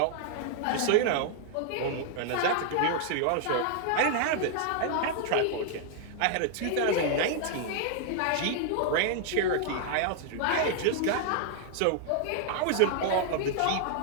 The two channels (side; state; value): both; different; correlation 0.00